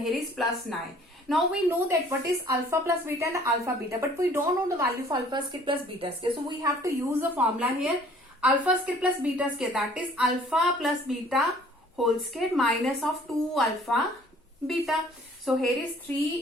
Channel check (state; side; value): normal; both; correlation 0.55